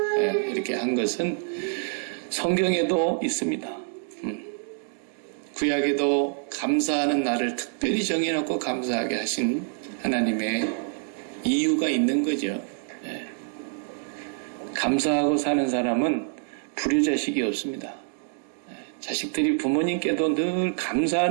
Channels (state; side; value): silent; left; 61 dB below the other